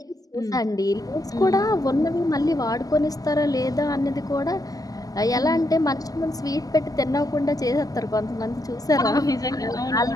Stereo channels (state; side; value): late; right; 0.17 ms